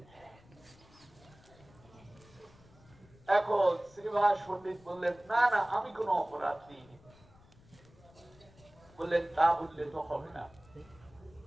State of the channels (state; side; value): noise; left; rumble, 25 dB below the sound